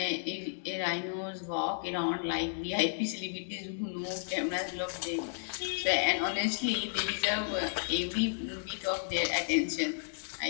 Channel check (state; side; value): silent; right; digital silence